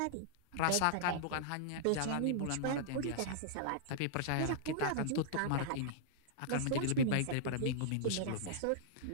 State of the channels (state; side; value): different; both; correlation -0.01